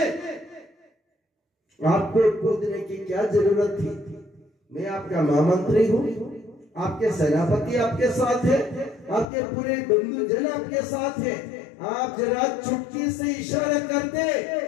आपको कूदने की क्या जरूरत थी? मैं आपका महामंत्री हूं, आपके सेनापति आपके साथ है, आपके पूरे बंधु जन आपके साथ है, आप जरा चुटकी से इशारा करते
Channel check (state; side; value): drops out; right; at 9.2 s